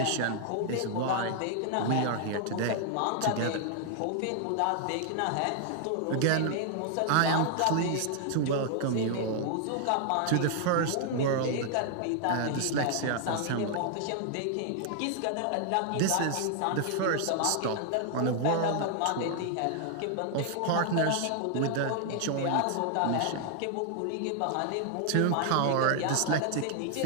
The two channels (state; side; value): different; both; correlation 0.00